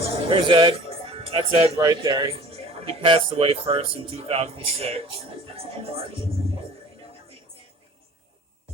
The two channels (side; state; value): both; normal; correlation 0.46